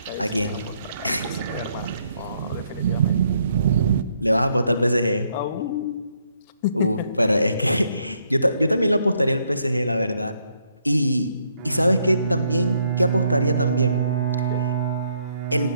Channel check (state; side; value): inverted; both; correlation -0.72